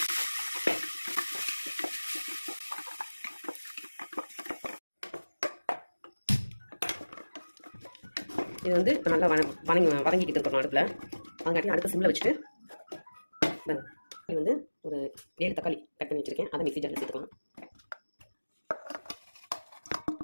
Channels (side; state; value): both; inverted; correlation -1.00